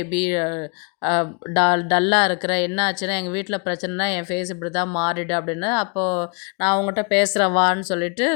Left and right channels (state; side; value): quieter; right; 34.7 dB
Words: டல்லாக இருக்கிற, என்ன ஆச்சுன்னா எங்கள் வீட்டில் பிரச்சனைனா என் ஃபேஸ் இப்படி தான் மாறிடு அப்படின்னு. அப்போது நான் அவங்ககிட்ட பேசுகிறேன் வான்னு சொல்லிட்டு